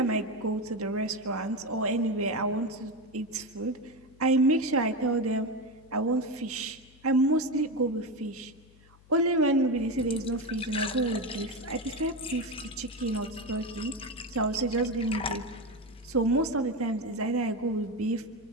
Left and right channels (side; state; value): left; noise; hum, 27 dB below the sound